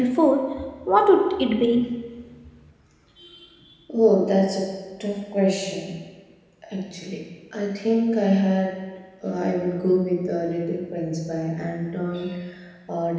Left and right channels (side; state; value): both; identical; correlation 1.00